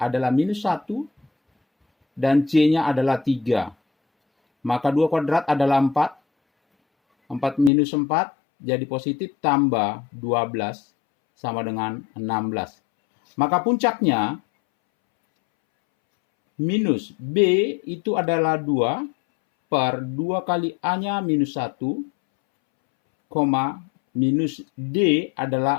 minus 1, dan C-nya adalah 3. Maka 2 kuadrat adalah 4. 4 minus 4 jadi positif, tambah 12 sama dengan 16. Maka puncaknya minus B itu adalah 2 per 2 kali A-nya minus 1, minus D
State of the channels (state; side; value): drops out; right; at 7.7 s